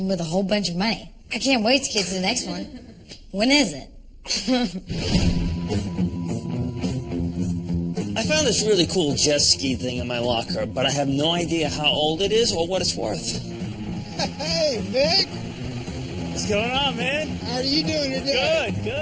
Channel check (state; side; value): identical; both; correlation 1.00